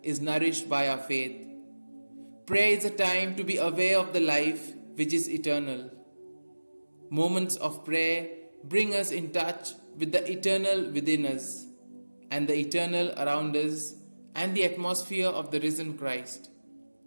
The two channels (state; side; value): inverted; both; correlation -1.00